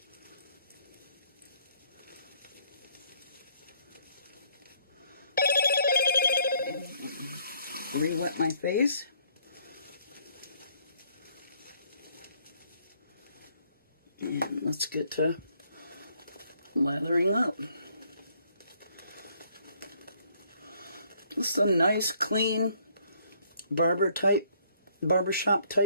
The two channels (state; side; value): inverted; both; correlation -0.66